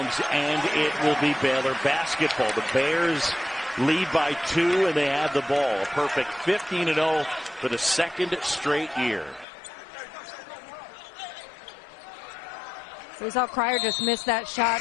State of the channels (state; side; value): drops out; right; at 9.5 s